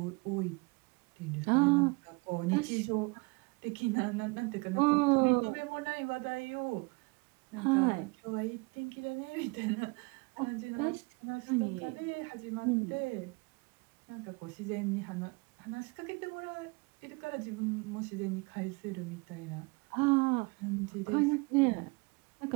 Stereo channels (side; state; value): left; quieter; 28.1 dB